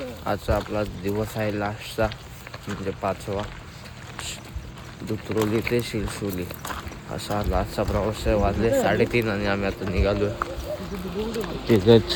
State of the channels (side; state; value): both; identical; correlation 1.00